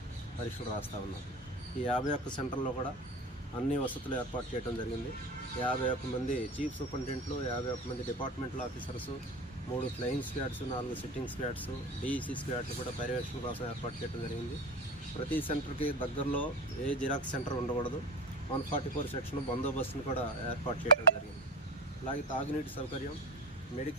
పరీక్షలు రాస్తూ ఉన్నారు. ఈ 51 సెంటర్లో కూడా అన్ని వసతులు ఏర్పాటు చేయడం జరిగింది. 51 మంది చీఫ్ సూపరింటెండెంట్లు, 51 మంది departmental officers, 3 flying squads, 4 sitting squads, DEC squads కూడా పర్యవేక్షణ కోసం ఏర్పాటు చేయడం జరిగింది. ప్రతి సెంటర్కి దగ్గరలో ఏ జిరాక్స్ సెంటర్ ఉండకూడదు. 144 సెక్షన్ బందోబస్తును కూడా ఏర్పాటు చేయడం జరిగింది. అలాగే తాగునీటి సౌకర్యం,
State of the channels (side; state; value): both; normal; correlation 0.28